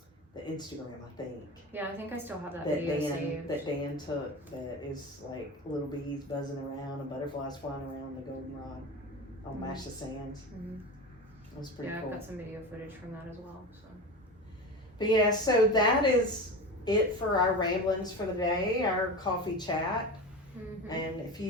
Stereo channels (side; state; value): both; normal; correlation 0.27